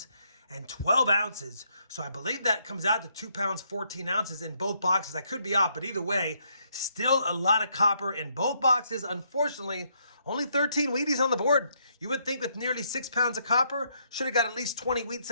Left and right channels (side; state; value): both; inverted; correlation -0.73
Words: and 12 ounces. So I believe that comes out to 2 pounds, 14 ounces in both boxes. I could be off, but either way, still a lot of copper in both boxes. Unfortunately, only 13 Wheaties on the board. You would think with nearly 6 pounds of copper, should have got at least 20 wheat